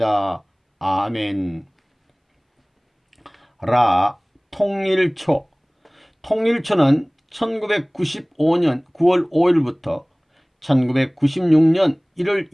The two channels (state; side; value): identical; both; correlation 1.00